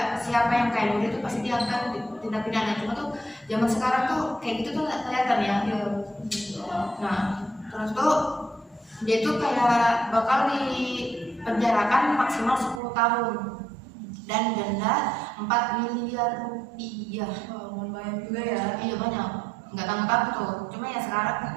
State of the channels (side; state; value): left; drops out; at 12.8 s